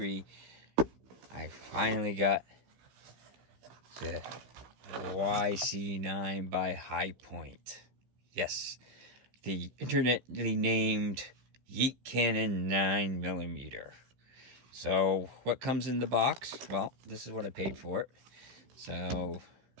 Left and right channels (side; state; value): left; late; 15 ms